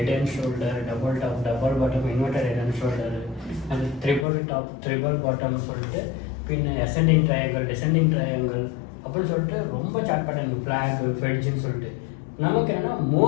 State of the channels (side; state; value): right; drops out; at 4.2 s